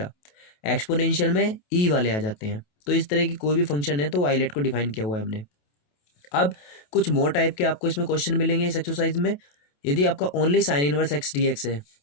Exponential में ई वाले आ जाते हैं। तो इस तरह की कोई भी फंक्शन है तो आइलेट को डिफाइन किया हुआ है हमने। अब कुछ मोर टाइप के आपको इसमें क्वेश्चन मिलेंगे इस एक्सरसाइज में। यदि आपका only sign inverse x D x है,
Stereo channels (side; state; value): right; late; 28 ms